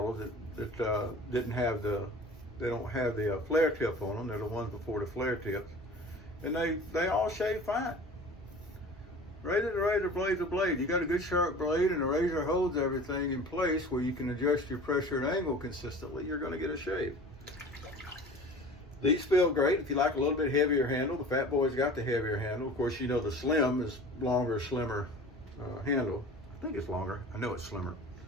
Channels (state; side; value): normal; both; correlation 0.41